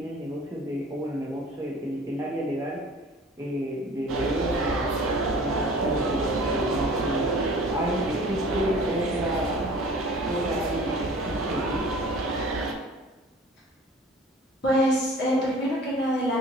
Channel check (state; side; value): normal; both; correlation 0.46